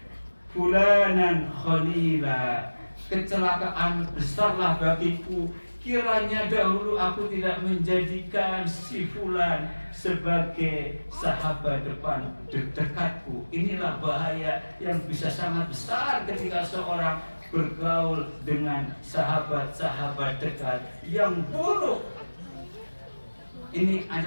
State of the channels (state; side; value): inverted; both; correlation -1.00